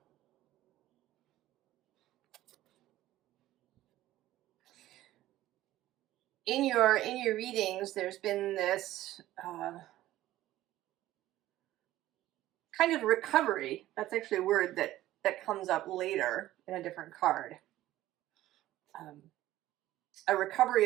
In your readings, there's been this kind of recovery. That's actually a word that comes up later in a different card. A recovery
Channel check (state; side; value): quieter; left; 14.9 dB